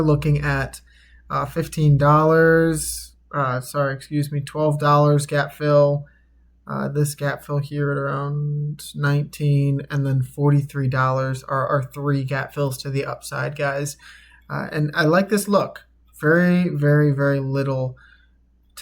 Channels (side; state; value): both; identical; correlation 1.00